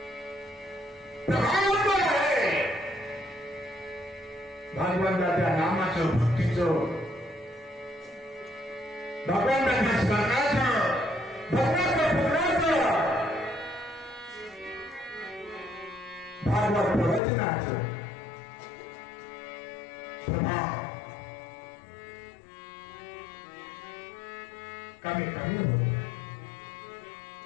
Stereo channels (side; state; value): right; drops out; at 17.2 s